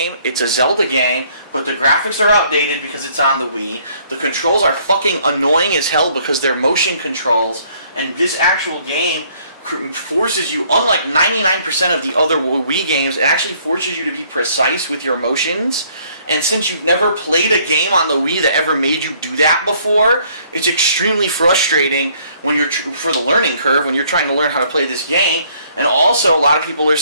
it's a Zelda game, but the graphics are outdated because it's on the Wii. The controls are fucking annoying as hell because they're motion controls, and this actual game forces you, unlike 99% of the other Wii games, it actually forces you to be precise with your motions. And since you've never played a game on the Wii that ever made you do that before, it's extremely frustrating when you're for the learning curve when you're trying to learn how to play this game. And also, a lot of people are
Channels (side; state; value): both; inverted; correlation -0.63